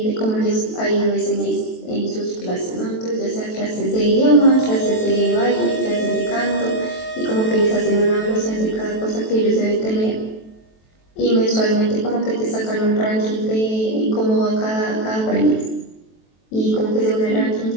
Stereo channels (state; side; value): late; right; 23 ms